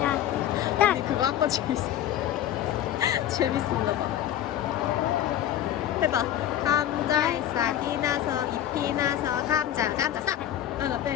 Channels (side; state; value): right; quieter; 11.5 dB